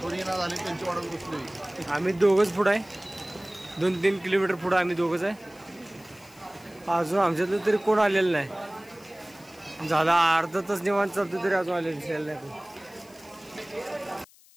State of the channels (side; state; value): left; noise; hiss, 26 dB below the sound